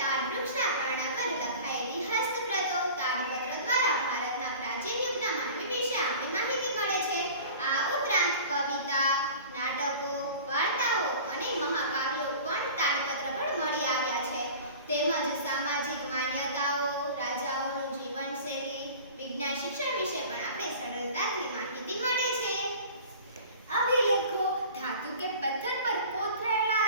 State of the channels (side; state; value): both; inverted; correlation -0.40